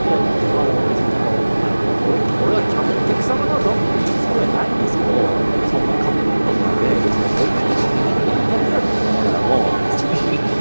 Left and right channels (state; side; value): inverted; both; correlation -1.00